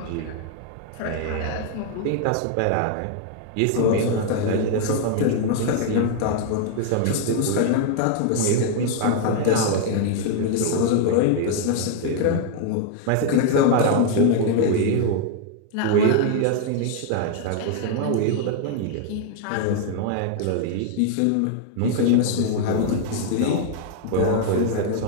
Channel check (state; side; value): different; both; correlation 0.00